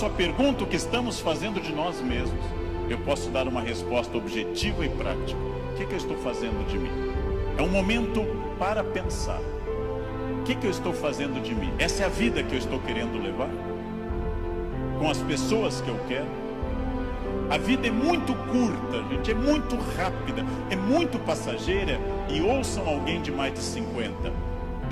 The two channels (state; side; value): identical; both; correlation 1.00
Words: a pergunta o que estamos fazendo de nós mesmos, eu posso dar uma resposta objetiva e prática. O que eu estou fazendo de mim? É um momento para pensar. O que eu estou fazendo de mim? Essa é a vida que eu estou querendo levar? Com as pessoas que eu quero? A vida é muito curta, gente, é muito rápida, é muito passageira. E ouçam alguém de mais de 50.